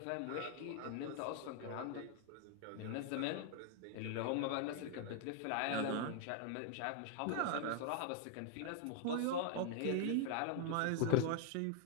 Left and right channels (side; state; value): both; different; correlation 0.00